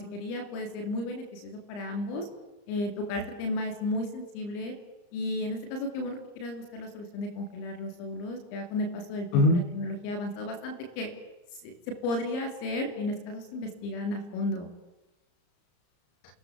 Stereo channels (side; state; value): right; late; 34 ms